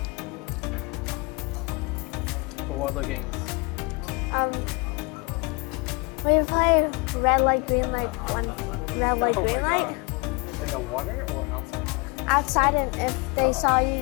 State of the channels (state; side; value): quieter; right; 27.3 dB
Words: For what other games? We play red light, green light, one red light, Oh green my light. god. In the water or outside? Outside, and if they saw you